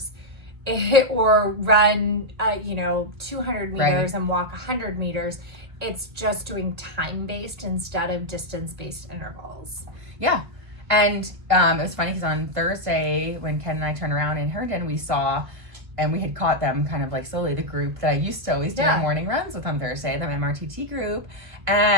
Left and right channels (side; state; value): left; late; 1.5 ms